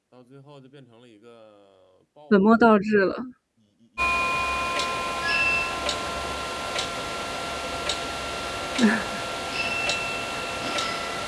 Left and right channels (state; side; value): identical; both; correlation 1.00